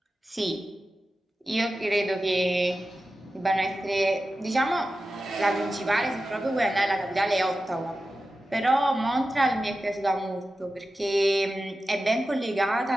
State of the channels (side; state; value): both; normal; correlation 0.93